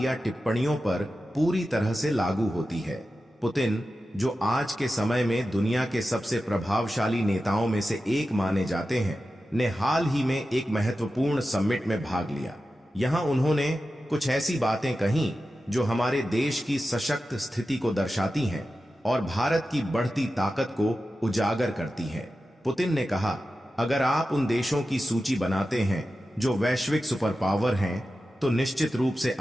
टिप्पणियों पर पूरी तरह से लागू होती है। पुतिन, जो आज के समय में दुनिया के सबसे प्रभावशाली नेताओं में से एक माने जाते हैं, ने हाल ही में एक महत्वपूर्ण समिट में भाग लिया। यहां उन्होंने कुछ ऐसी बातें कहीं जो हमारे देश की सशक्त स्थिति को दर्शाती हैं और भारत की बढ़ती ताकत को उजागर करती हैं। पुतिन ने कहा, अगर आप उन देशों की सूची बनाते हैं जो वैश्विक सुपर पावर हैं, तो निश्चित रूप से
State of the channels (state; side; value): normal; both; correlation 0.93